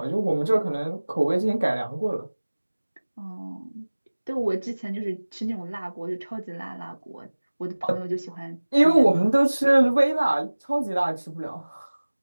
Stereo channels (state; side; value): inverted; both; correlation -1.00